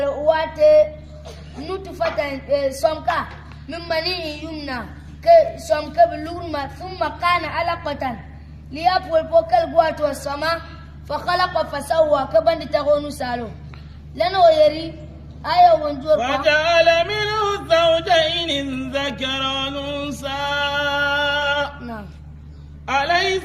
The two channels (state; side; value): identical; both; correlation 1.00